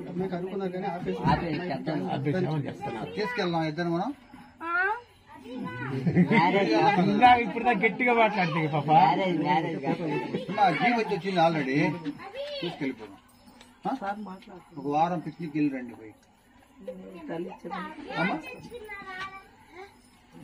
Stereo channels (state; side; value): identical; both; correlation 1.00